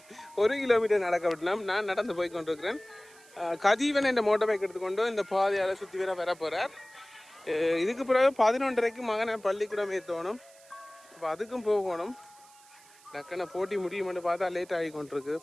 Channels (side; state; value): right; noise; hiss, 25 dB below the sound